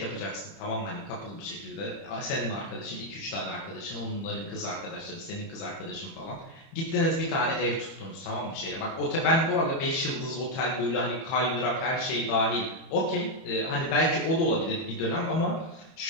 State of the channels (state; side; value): late; right; 30 ms